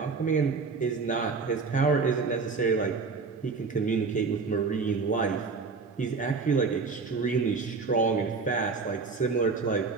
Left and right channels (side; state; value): left; quieter; 4.6 dB